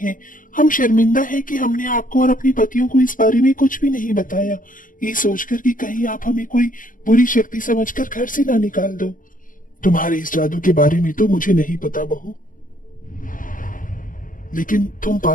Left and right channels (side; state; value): right; late; 0.39 ms